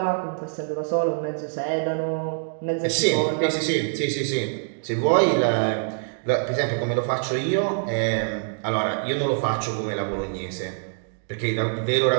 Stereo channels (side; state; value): left; silent; digital silence